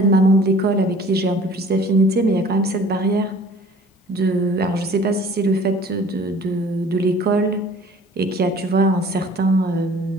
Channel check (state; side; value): normal; both; correlation 0.49